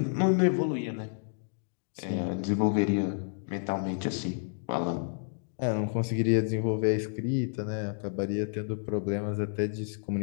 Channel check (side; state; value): right; silent; digital silence